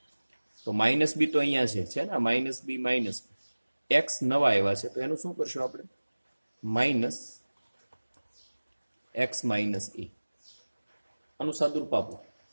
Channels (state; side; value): inverted; both; correlation -1.00